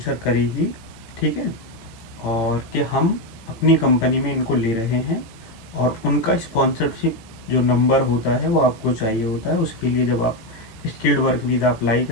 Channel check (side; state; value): right; late; 18 ms